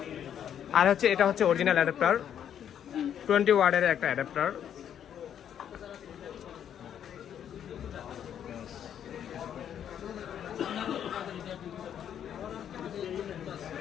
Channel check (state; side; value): quieter; right; 9.4 dB